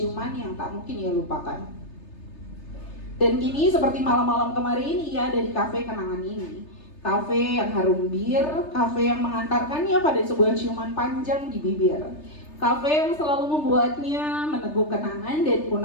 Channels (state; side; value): late; right; 3.3 ms